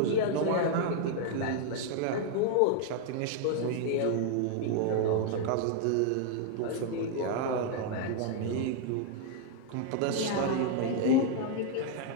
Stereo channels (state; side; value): different; both; correlation 0.00